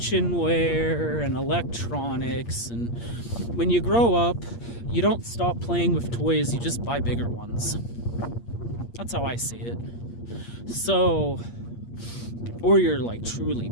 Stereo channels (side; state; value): right; late; 8.5 ms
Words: and electronics. And when you grow up, you don't stop playing with toys, you just buy bigger ones. That's how I see it. So, or you're like truly